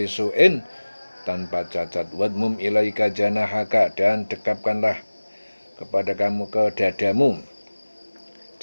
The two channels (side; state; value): both; inverted; correlation -1.00